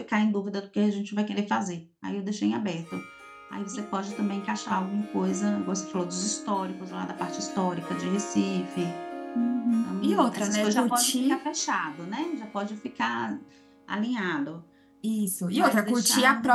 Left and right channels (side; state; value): both; identical; correlation 1.00